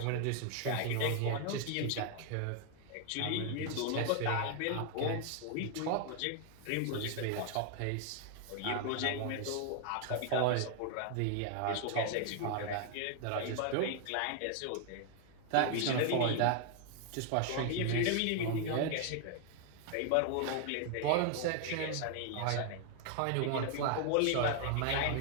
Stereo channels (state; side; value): different; both; correlation 0.00